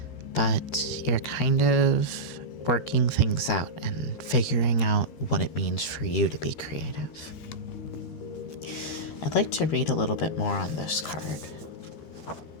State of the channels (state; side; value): late; right; 13 ms